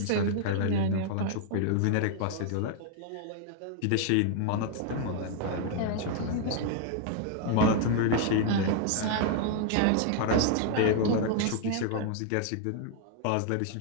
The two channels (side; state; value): both; different; correlation 0.00